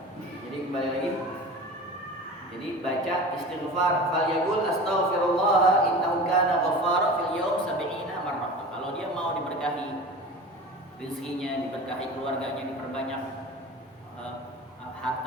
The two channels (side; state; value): both; normal; correlation 0.35